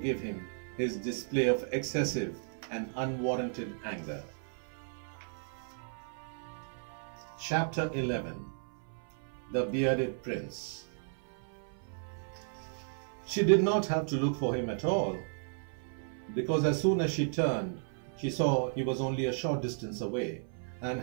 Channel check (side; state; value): left; silent; 55 dB below the other